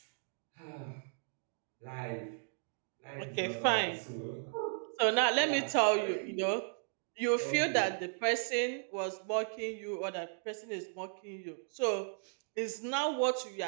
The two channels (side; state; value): left; silent; digital silence